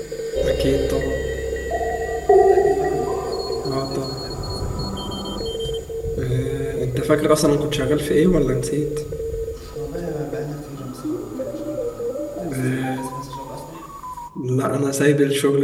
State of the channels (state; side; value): identical; both; correlation 1.00